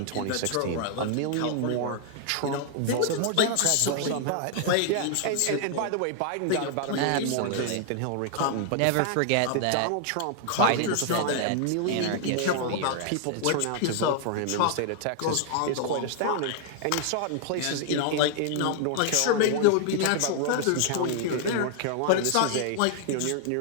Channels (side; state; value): both; different; correlation 0.00